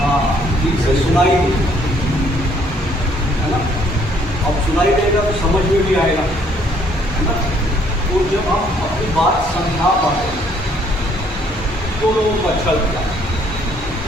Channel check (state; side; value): normal; both; correlation 0.64